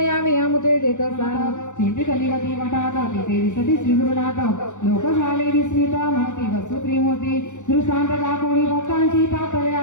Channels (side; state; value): right; late; 0.85 ms